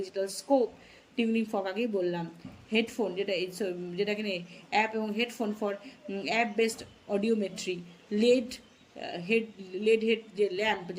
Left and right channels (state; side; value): identical; both; correlation 1.00